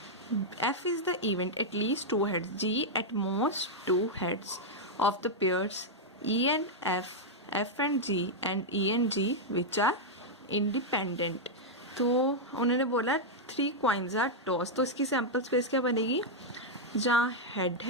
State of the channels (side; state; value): both; normal; correlation -0.04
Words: F is the event at least 2 heads. G at most 2 heads of the pairs E and F, F and G, and E and G which are independent. तो उन्होंने बोला 3 coins are tossed. तो इसकी sample space क्या बनेगी, जहाँ head